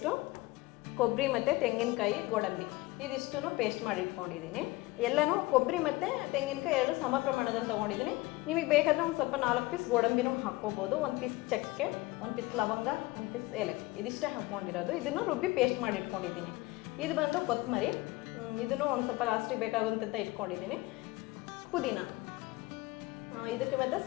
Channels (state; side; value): quieter; right; 20.5 dB